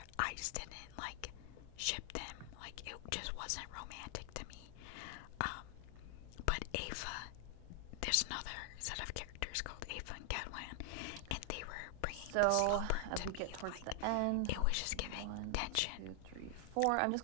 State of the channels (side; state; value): both; different; correlation 0.00